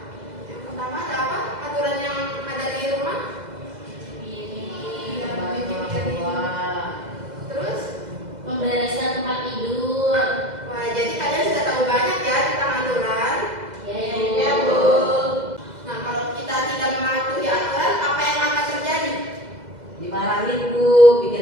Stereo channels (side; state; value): left; late; 2.0 ms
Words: Yang pertama ada apa? Aturan yang ada di rumah? Terus? Membereskan tempat tidur. Wah, jadi kalian sudah tahu banyak ya tentang aturan. Iya, Bu. Nah, kalau kita tidak mematuhi aturan, apa yang akan terjadi? Dimarahin, Bu. Bikin